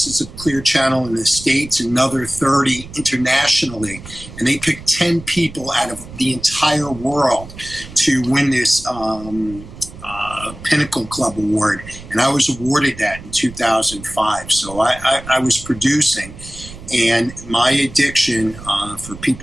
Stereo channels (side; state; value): right; noise; rumble, 15 dB below the sound